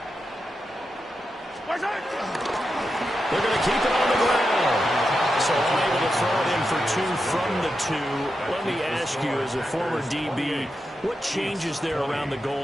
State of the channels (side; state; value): both; normal; correlation 0.88